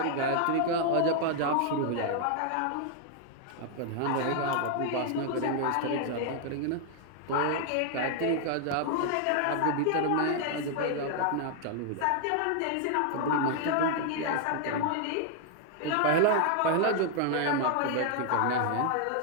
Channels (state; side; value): different; both; correlation 0.00